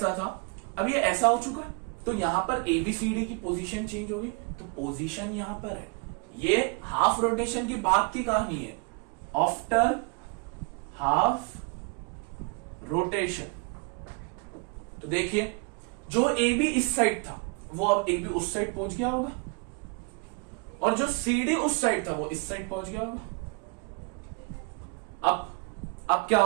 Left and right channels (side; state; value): left; quieter; 31.7 dB